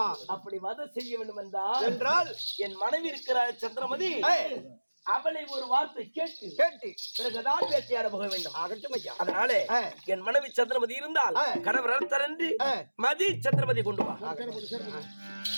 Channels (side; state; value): both; inverted; correlation -1.00